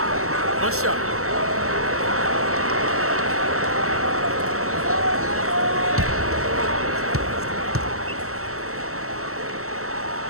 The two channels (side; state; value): left; late; 0.63 ms